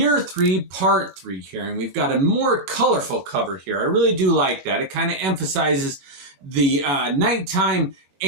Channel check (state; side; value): late; left; 22 ms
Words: 3, Part 3 here, and we've got a more colorful cover here. I really do like that. It kind of emphasizes the nighttime